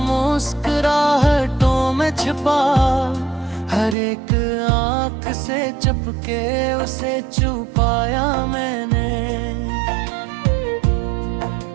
में छिपा, हर एक आंख से चपके उसे छुपाया मैंने।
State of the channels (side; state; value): left; drops out; at 4.0 s